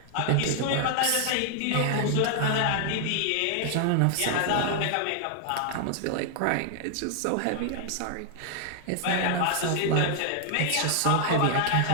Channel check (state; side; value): different; both; correlation 0.00